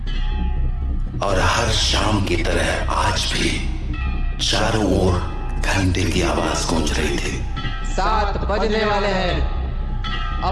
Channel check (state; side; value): identical; both; correlation 1.00